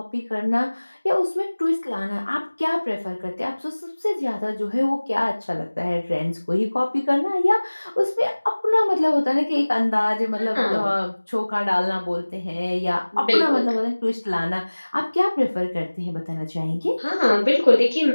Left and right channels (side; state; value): both; inverted; correlation -1.00